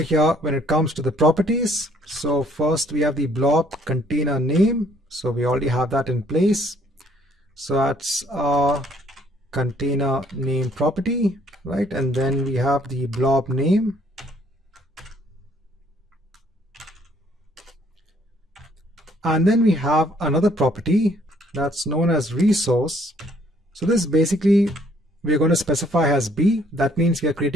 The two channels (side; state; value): both; normal; correlation 0.64